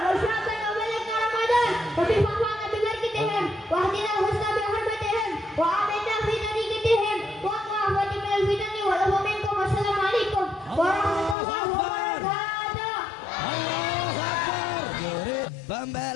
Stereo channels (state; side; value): drops out; right; at 11.4 s